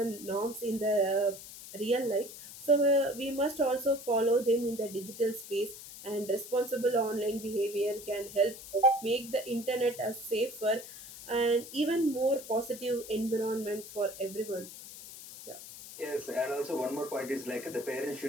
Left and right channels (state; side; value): noise; left; hiss, 14 dB below the sound